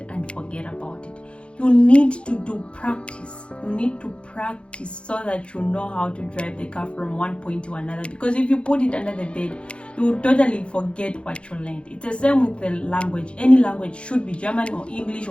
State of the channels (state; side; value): late; right; 0.058 ms